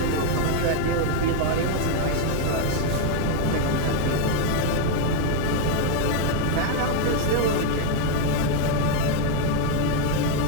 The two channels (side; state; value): both; different; correlation 0.01